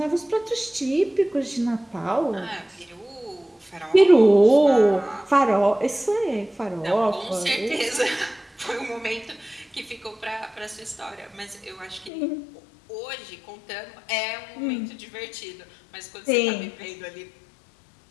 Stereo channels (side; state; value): right; drops out; at 12.1 s